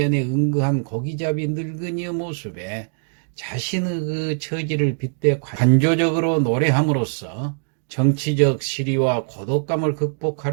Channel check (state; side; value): silent; left; digital silence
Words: 응거한 고기잡이 늙은이의 모습에 자신의 처지를 빗대 관조적으로 노래함으로써 정치적 시리와 고독감을